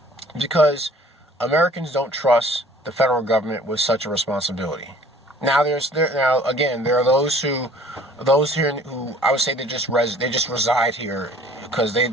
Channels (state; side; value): normal; both; correlation 0.53